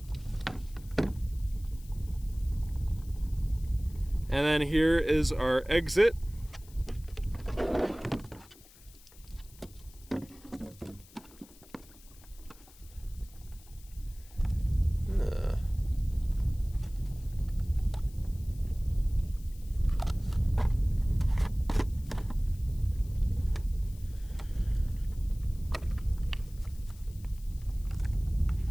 And then here is our exit.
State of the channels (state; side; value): noise; left; hiss, 24 dB below the sound